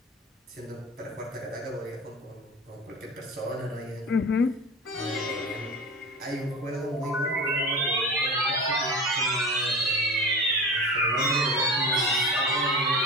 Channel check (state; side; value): normal; both; correlation 0.32